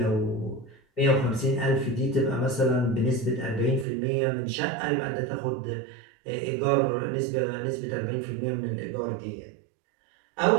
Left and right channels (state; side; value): drops out; left; at 3.9 s